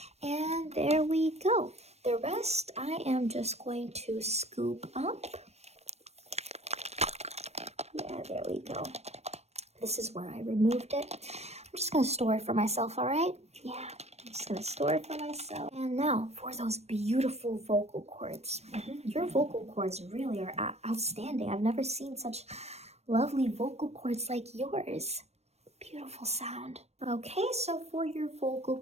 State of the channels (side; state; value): left; late; 0.31 ms